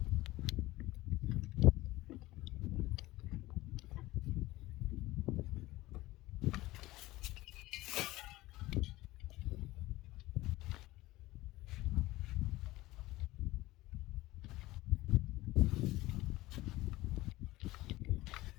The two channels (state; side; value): quieter; right; 18.3 dB